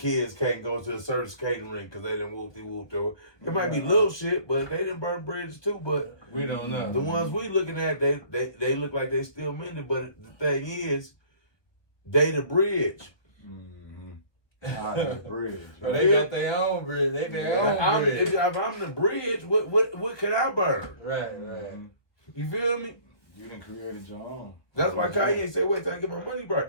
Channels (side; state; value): right; late; 1.2 ms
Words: can't go to a certain skating rink because they done whoop-de-whooped over. It might be little shit, but they done burn bridges too. But we don't know. The ones we looking at, they look like they still mending. But the thing is, they the bridge. The bridge. They got their own bridge. They their own bridge. If I'm the bridge, what can I burn? Right. You feel me? You done created your own. That's why Kanye said, "Wait till I get my money back."